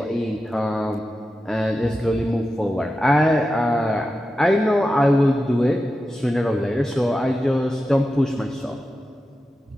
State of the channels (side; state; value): both; normal; correlation 0.91